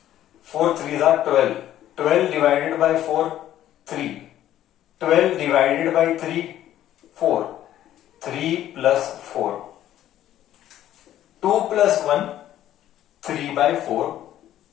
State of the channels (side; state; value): right; quieter; 12.4 dB